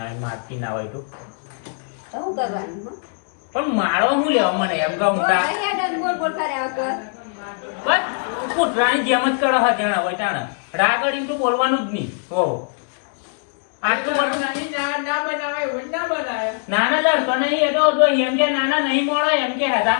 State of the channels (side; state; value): right; silent; 62 dB below the other